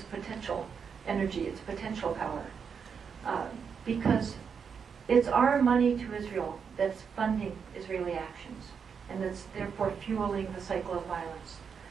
potential energy. It's potential power. Because it's our money to Israel that's funding Israeli actions, and that's therefore fueling the cycle of violence.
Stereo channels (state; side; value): quieter; left; 6.5 dB